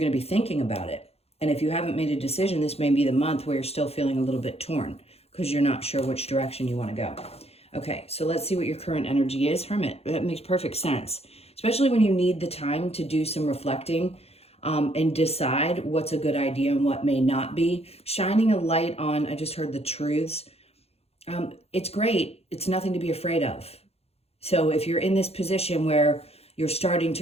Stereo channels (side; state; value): right; late; 0.29 ms